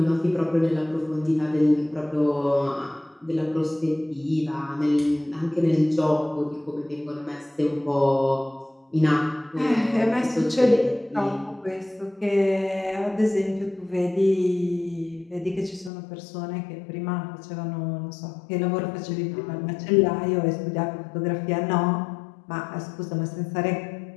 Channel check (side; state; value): right; drops out; at 15.9 s